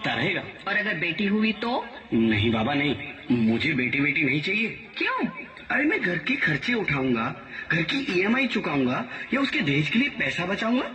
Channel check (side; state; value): both; identical; correlation 1.00